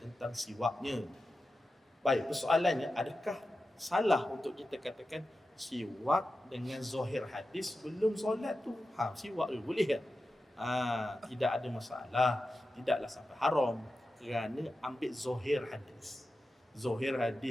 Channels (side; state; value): both; normal; correlation 0.92